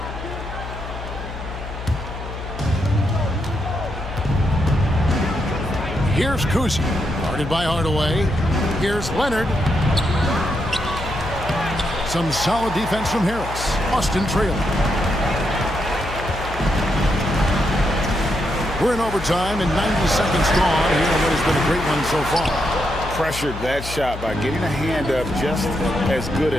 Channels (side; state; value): left; noise; hum, 9 dB below the sound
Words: Here's Cousy. Guarded by Hardaway. Here's Leonard. Some solid defense from Harris. Austin trailing. We're in overtime and 90 seconds gone here in what has been a great one so far. Pressured that shot by getting a hand up just as good